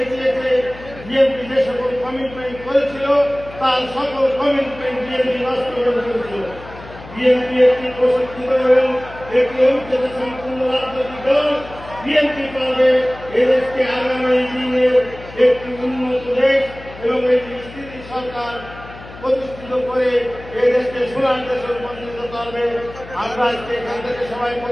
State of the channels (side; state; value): left; noise; hum, 17 dB below the sound